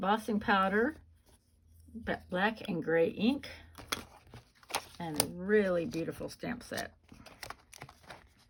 powder, black and gray ink, and a really beautiful stamp set.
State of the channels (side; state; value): both; identical; correlation 1.00